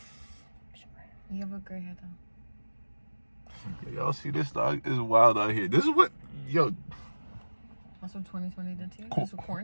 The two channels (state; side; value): inverted; both; correlation -1.00